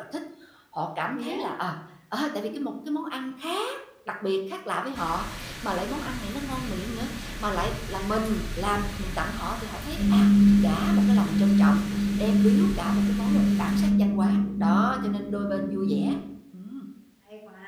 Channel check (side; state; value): both; identical; correlation 1.00